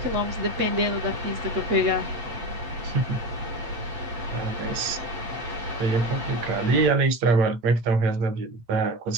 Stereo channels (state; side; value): late; left; 8.5 ms